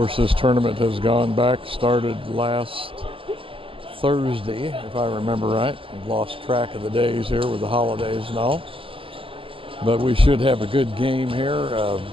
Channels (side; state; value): left; late; 0.26 ms